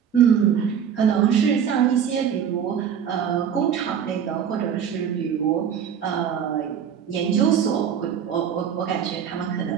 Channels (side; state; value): left; quieter; 8.3 dB